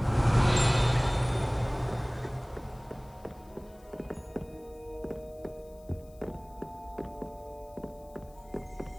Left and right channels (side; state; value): left; noise; hiss, 28 dB below the sound